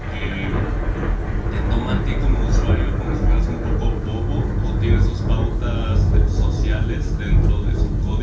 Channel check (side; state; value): both; identical; correlation 1.00